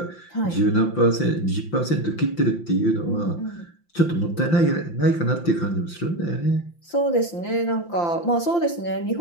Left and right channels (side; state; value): right; late; 5.8 ms